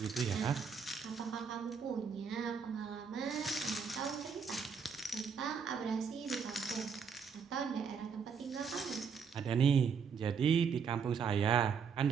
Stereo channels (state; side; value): quieter; left; 6.3 dB